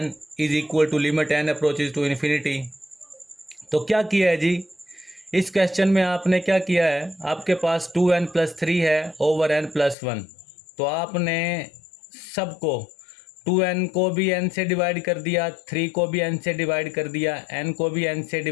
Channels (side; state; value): right; drops out; at 10.0 s